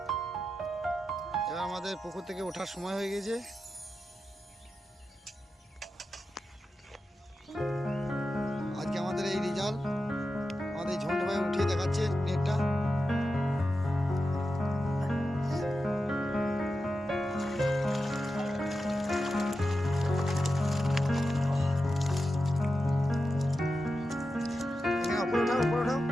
এবার আমাদের পুকুর থেকে ওঠার সময় হয়ে গেছে। আজকে আমাদের এই রেজাল্ট আমাদের ঝন্টু ভাই উঠিয়ে দেখাচ্ছে নেটটা। উপরে ওঠাও, উপরে ওঠাও।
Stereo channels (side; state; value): both; normal; correlation 0.91